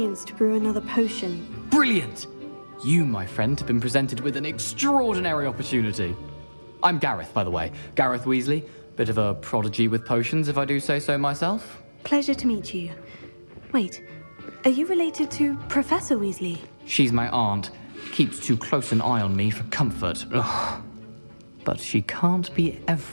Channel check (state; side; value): inverted; both; correlation -1.00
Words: to brew another potion. Brilliant! You, my friend, have been presented with an extraordinary opportunity. I'm Gareth, by the way. Gareth Weasley. Bit of a prodigy with potions, if I do say so myself. Pleasure to meet you. Wait, are you related to Professor Weasley? She's my aunt. Keeps too close an eye on me for comfort. Ugh. But she can't be